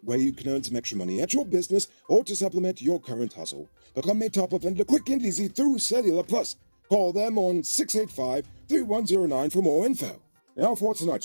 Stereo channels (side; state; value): both; inverted; correlation -1.00